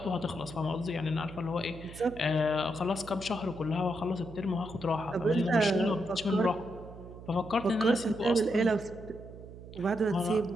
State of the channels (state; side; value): noise; right; hum, 15 dB below the sound